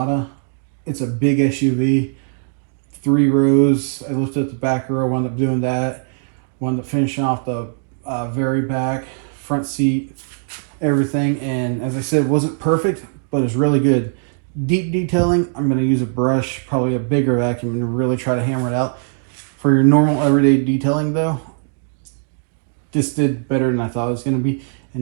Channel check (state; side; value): silent; left; digital silence